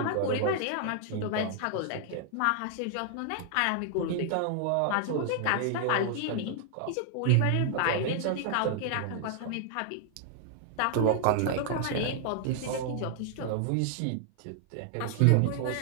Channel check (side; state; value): both; different; correlation 0.00